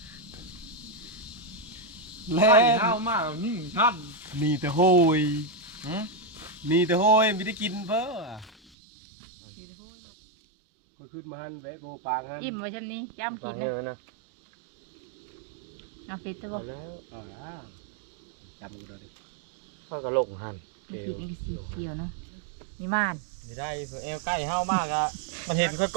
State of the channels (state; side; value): drops out; left; at 8.6 s